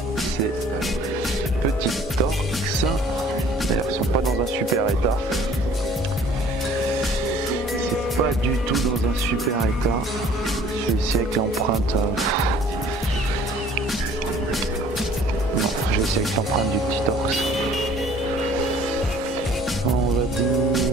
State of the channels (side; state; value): both; normal; correlation 0.54